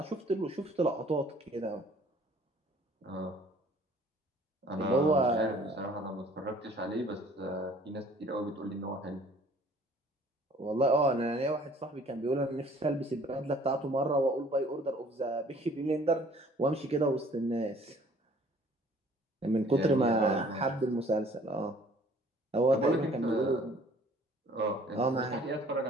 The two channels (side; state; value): both; normal; correlation 0.55